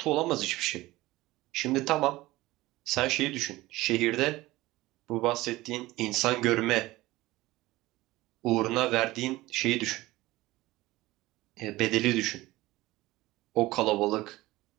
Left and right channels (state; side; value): quieter; left; 18.6 dB